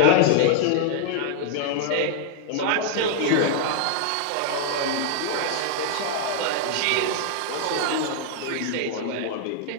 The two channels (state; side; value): different; both; correlation 0.00